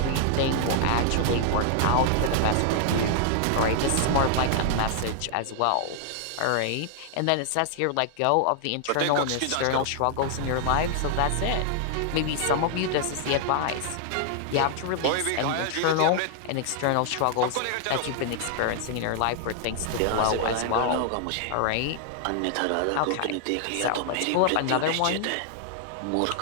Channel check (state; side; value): different; both; correlation 0.00